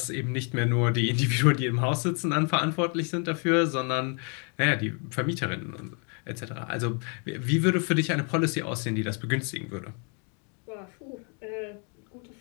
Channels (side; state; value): right; quieter; 38.5 dB